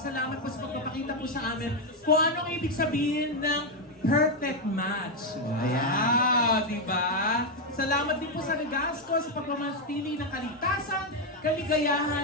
po sa pagpapakita po sa amin kung anong ibig sabihin ng perfect match. Wow, di ba? Salamat din po sa Regasco sa pagmamanatili ng kaligtasan,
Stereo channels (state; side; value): normal; both; correlation 0.04